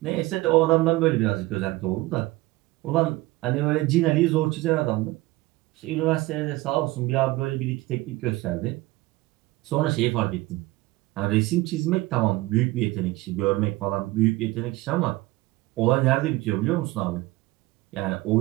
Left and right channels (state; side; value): quieter; left; 19.4 dB